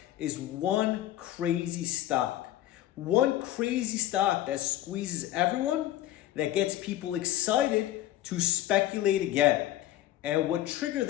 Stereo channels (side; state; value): right; quieter; 13.8 dB